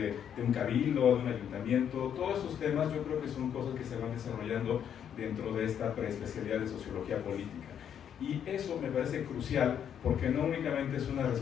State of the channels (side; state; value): right; quieter; 8.8 dB